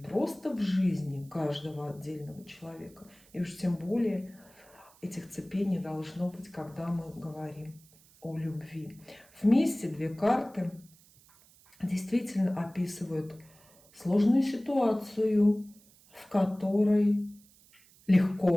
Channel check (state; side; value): noise; right; hiss, 27 dB below the sound